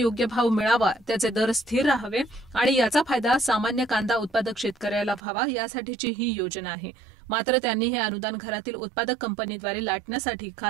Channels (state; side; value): drops out; left; at 5.2 s